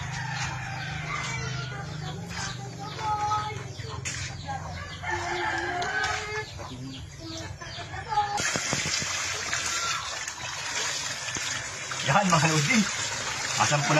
Yan mga lodi.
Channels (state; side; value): identical; both; correlation 1.00